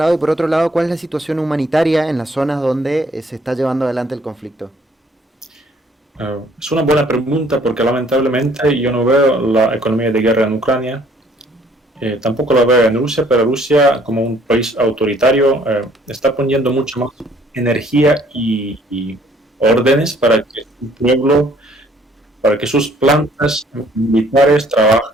y por otro lado, ¿cuál es la situación humanitaria en las zonas donde se está llevando adelante el conflicto? Es una buena pregunta porque lamentablemente yo no veo la economía de guerra en Ucrania. Tampoco la veo en Rusia, pero Rusia, como un país autoritario, está poniendo mucho más energía y órdenes para que su pueblo, para que sus plantas militares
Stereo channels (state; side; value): normal; both; correlation 0.61